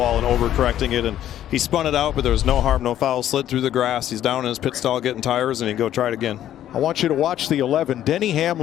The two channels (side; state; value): right; quieter; 11.7 dB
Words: and overcorrecting it. And he spun it out, but there was no harm, no foul. Slid through the grass. He's down in his pit stall getting tires, and he go try it again. I want you to watch the 11. Denny